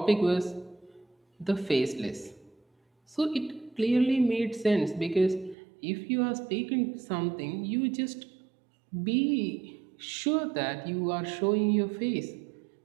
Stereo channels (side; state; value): left; drops out; at 5.6 s